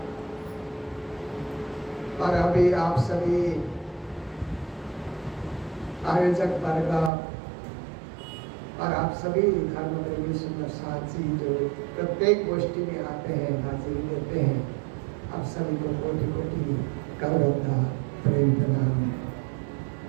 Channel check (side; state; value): left; drops out; at 7.1 s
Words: और अभी आप सभी आयोजक वर्ग और आप सभी धर्म प्रेमी सुंदर साथी जो प्रत्येक गोष्ठी में आते हैं, हाजिरी देते हैं, आप सभी को कोटि कोटि करवत्ता प्रेम प्रणाम।